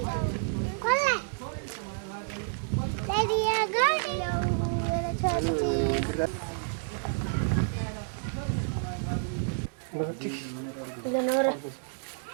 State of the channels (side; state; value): left; silent; digital silence